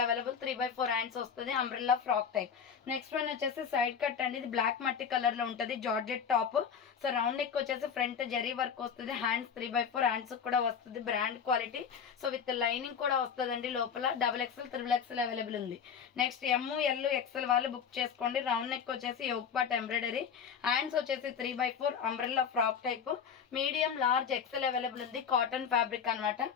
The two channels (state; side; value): quieter; right; 7.1 dB